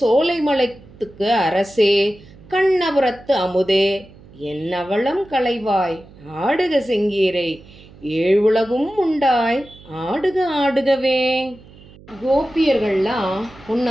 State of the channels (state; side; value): noise; right; hum, 22 dB below the sound